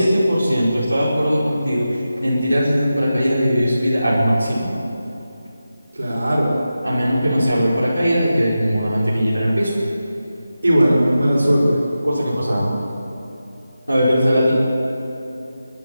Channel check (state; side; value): inverted; both; correlation -0.92